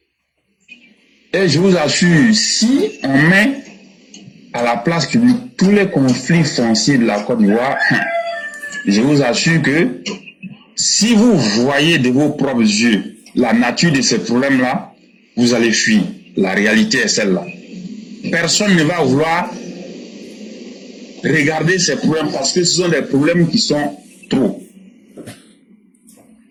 Et je vous assure, si on met à la place publique tous les conflits fonciers de la Côte d'Ivoire, je vous assure que si vous voyez de vos propres yeux la nature de ces problèmes-là, vous allez fuir. La réalité est celle-là. Personne ne va vouloir regarder ces problèmes parce que ce sont des problèmes qui sont trop.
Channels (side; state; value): both; identical; correlation 1.00